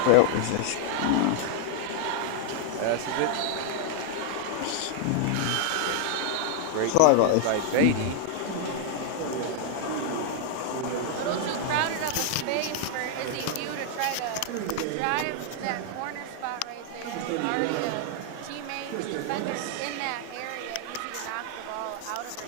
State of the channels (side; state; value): both; different; correlation 0.00